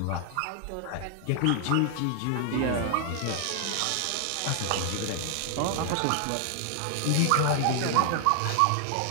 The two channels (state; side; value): different; both; correlation 0.00